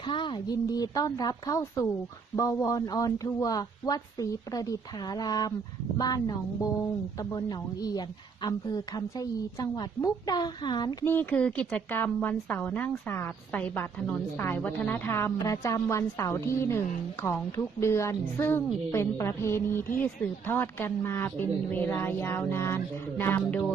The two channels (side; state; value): left; quieter; 5.6 dB